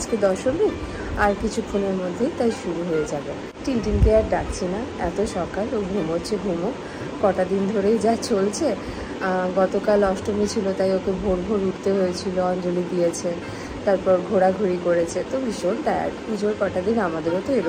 দশমী, আর কিছুক্ষণের মধ্যেই তাই শুরু হয়ে যাবে। টিনটিনকে আর ডাকছি না, এত সকাল, ও ঘুমোচ্ছে, কটা দিন ধরেই যা চলছে। গতকাল অষ্টমী ছিল, তাই ওকে ভোর ভোর উঠতে হয়েছিল, অঞ্জলি দিয়েছে, তারপর ঘোরাঘুরি করেছে, তো ভীষণ টায়ার্ড। পুজোর কটা দিন আমাদেরও তো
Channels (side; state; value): both; identical; correlation 1.00